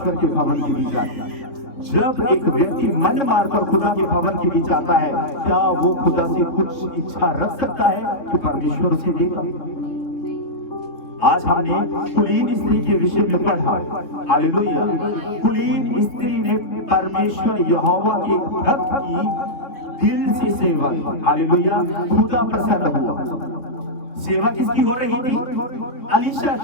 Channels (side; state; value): right; late; 3.3 ms